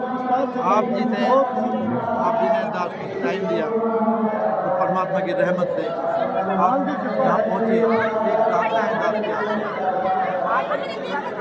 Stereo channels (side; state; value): both; identical; correlation 1.00